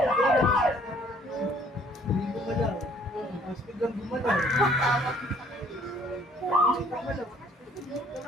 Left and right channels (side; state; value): both; normal; correlation 0.60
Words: Hindi gumalaw. Mas biglang gumalaw.